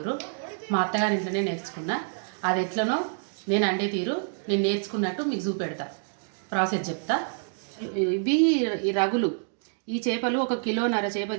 మా అత్తగారి ఇంట్లోనే నేర్చుకున్నా. అది ఎట్లనో నేను అండే తీరు నేను నేర్చుకున్నట్టు మీకు చూపెడతా, ప్రాసెస్ చెప్తా. ఇవి ఈ రగులు. ఈ చేపలు 1.5 కిలో చేప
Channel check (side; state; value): left; silent; digital silence